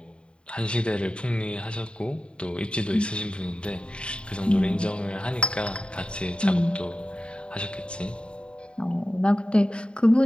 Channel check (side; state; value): right; late; 0.053 ms